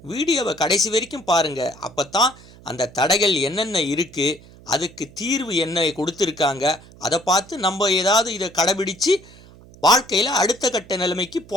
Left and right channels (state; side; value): noise; right; hum, 22 dB below the sound